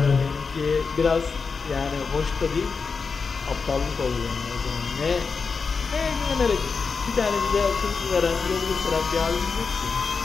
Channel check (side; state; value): right; quieter; 5.0 dB